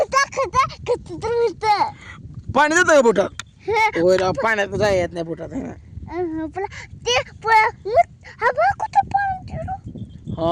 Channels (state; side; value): identical; both; correlation 1.00